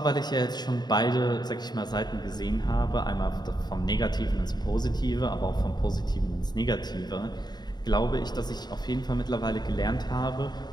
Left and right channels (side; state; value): right; late; 0.20 ms